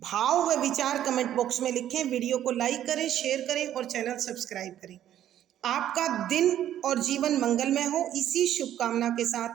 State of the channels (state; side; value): quieter; left; 11.5 dB